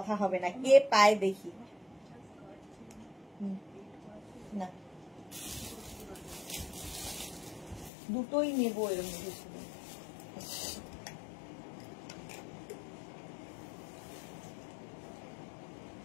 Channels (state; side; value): drops out; right; at 7.9 s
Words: হবে না, কে পায় দেখি। না দুটোই নেবো এর মধ্যে ছিল।